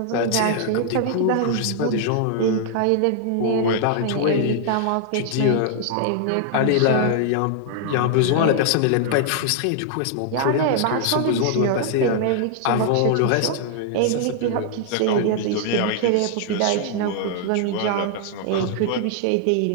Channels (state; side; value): different; both; correlation -0.01